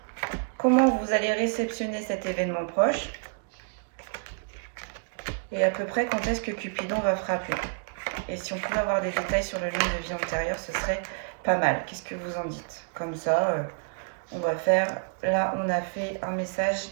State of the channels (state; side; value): quieter; left; 38.1 dB